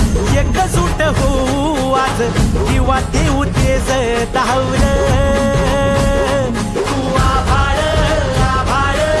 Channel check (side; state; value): both; identical; correlation 1.00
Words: एकजूट होऊ आज दिवा देऊ तेज धावून तू आभाळ आभाळ